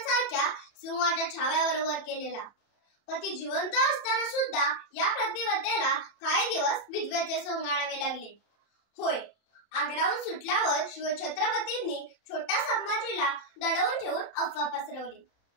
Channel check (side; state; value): right; late; 30 ms